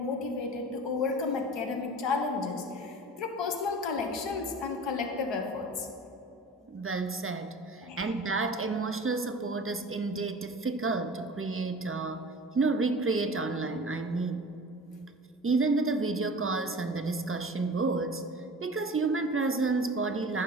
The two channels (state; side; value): normal; both; correlation 0.39